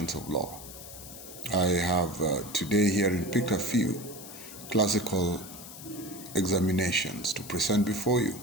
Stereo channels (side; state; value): left; noise; hiss, 14 dB below the sound